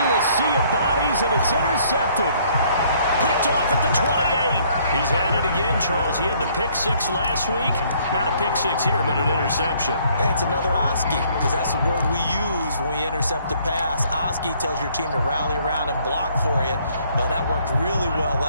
a sea of bodies, and it's intercepted. Picked off at the 28. He's had it again, Charles. He had the pick 6 last week. Not a pick 6 here, but an interception. It's another Oski, because that's the word we use when we intercept a pass. Oski tells your team to rally around and block for you. Well, that worked really well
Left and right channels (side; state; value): both; inverted; correlation -0.63